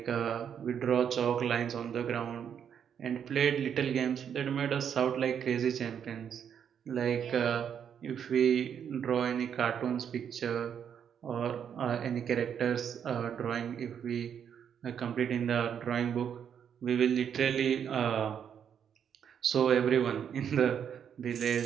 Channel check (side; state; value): left; quieter; 8.2 dB